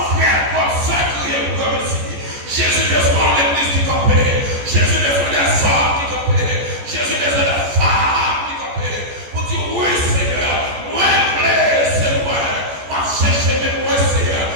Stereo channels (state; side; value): late; left; 14 ms